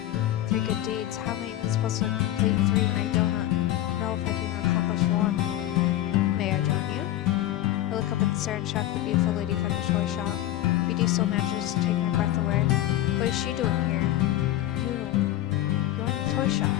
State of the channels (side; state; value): right; quieter; 14.1 dB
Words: 3 good deeds. How am I even supposed to complete 3 when I don't know if I can accomplish 1? May I join you? I look up and stare and shock the beautiful lady from the toy shop. BD still manages to take my breath away. What is she doing here? You're in the toy shop.